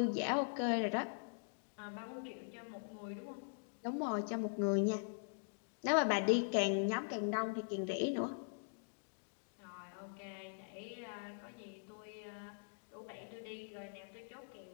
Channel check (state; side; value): silent; right; digital silence